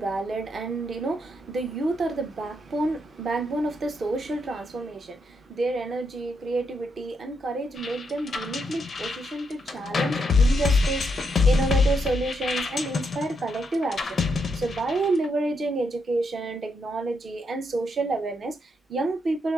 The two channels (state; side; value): normal; both; correlation 0.80